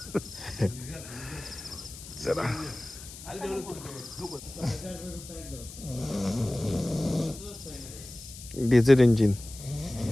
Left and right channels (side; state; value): left; noise; hiss, 14 dB below the sound